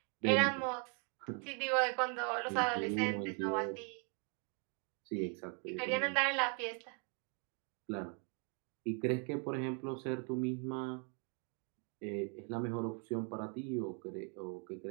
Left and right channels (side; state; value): left; quieter; 38.6 dB